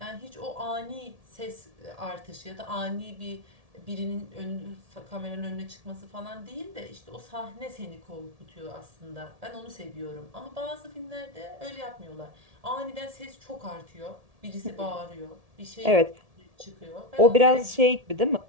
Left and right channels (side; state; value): left; late; 1.7 ms